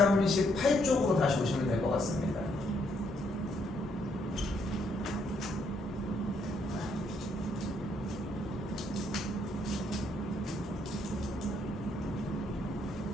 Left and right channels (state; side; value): normal; both; correlation 0.72